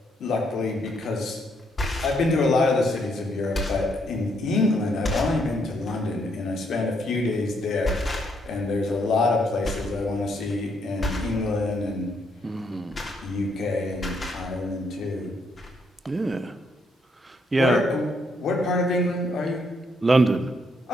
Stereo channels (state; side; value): normal; both; correlation 0.74